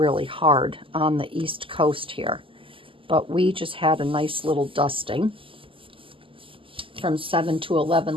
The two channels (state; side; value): late; left; 0.25 ms